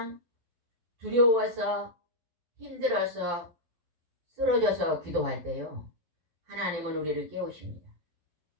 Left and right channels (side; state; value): left; late; 12 ms